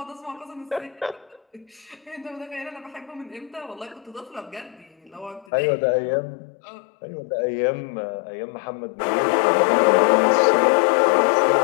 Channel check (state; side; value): drops out; right; at 5.5 s